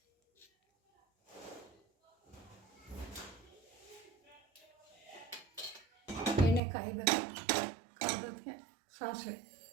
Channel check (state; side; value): drops out; left; at 6.6 s